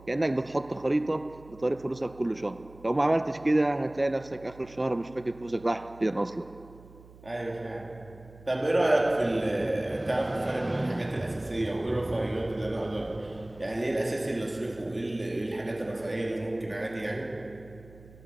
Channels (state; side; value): noise; right; hum, 21 dB below the sound